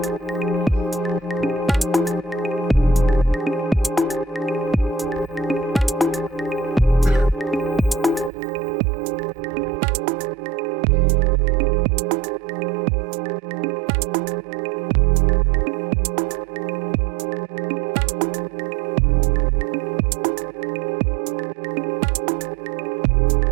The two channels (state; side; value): drops out; left; at 8.3 s